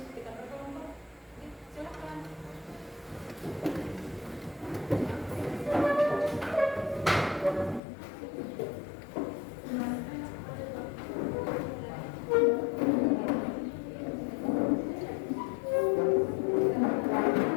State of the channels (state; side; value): drops out; right; at 7.8 s